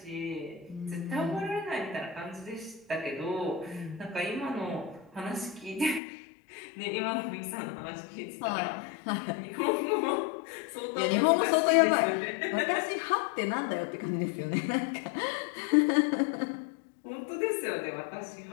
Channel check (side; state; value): right; drops out; at 6.0 s